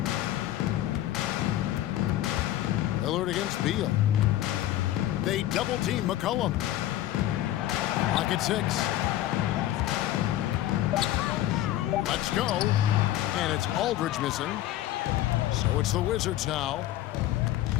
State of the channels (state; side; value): quieter; right; 13.8 dB